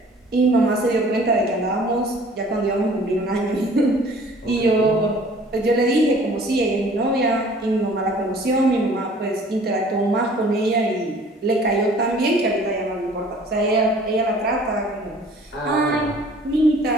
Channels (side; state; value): both; normal; correlation 0.52